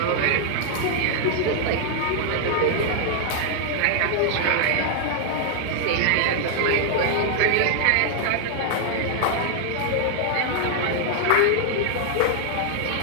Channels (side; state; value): both; different; correlation 0.00